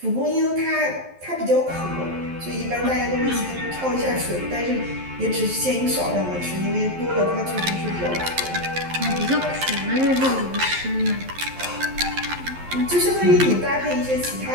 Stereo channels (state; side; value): late; left; 11 ms